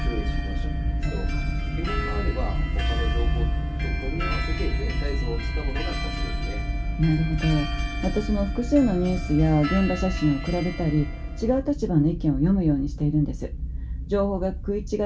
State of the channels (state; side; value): identical; both; correlation 1.00